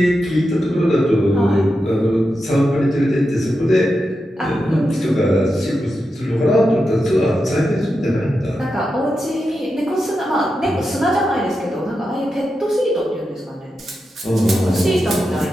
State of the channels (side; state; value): both; normal; correlation 0.88